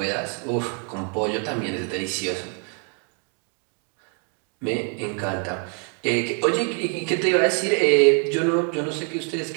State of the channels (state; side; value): quieter; left; 39.3 dB